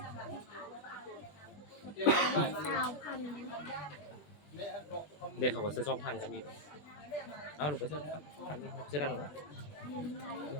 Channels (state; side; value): late; right; 20 ms